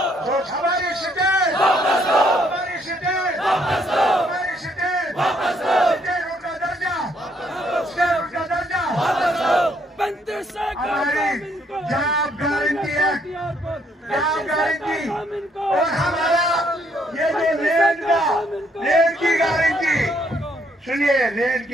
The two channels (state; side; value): normal; both; correlation 0.70